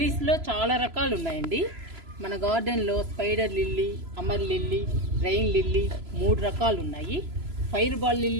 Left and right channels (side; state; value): left; late; 3.0 ms